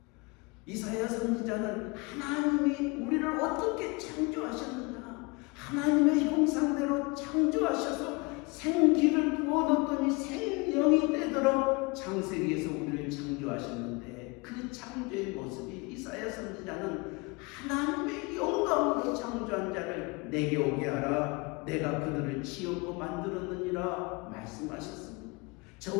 이사야 선지자는 하나님이 우리를 어떻게 창조하셨느냐, 하나님의 형상대로 창조하셔서 생기를 부어놓더니 생명이 되도록 창세기에서 우리를 창조하셨는데, 그 창조의 모습이 이사야 선지자는 하나님의 영광으로 창조한 자를 내게 오게 하라, 내가 그들을 지었고 만들었느니라 말씀하셨습니다.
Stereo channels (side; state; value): right; quieter; 27.8 dB